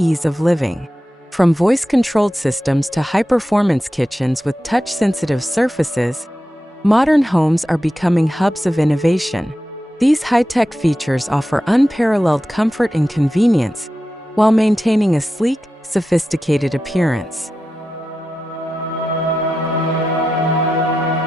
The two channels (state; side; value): normal; both; correlation 0.91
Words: of living. From voice-controlled systems to high-performance kitchens with touch-sensitive surfaces, modern homes are becoming hubs of innovation. These high-tech features offer unparalleled comfort and convenience while maintaining a sleek, sophisticated appearance.